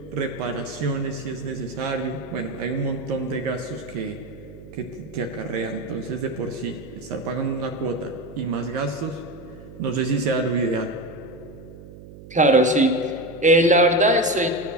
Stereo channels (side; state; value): right; noise; hum, 17 dB below the sound